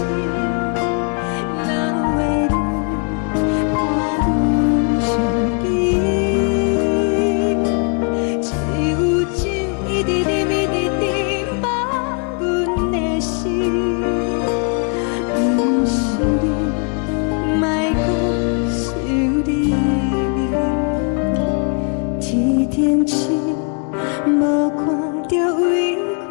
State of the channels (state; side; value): quieter; right; 39.3 dB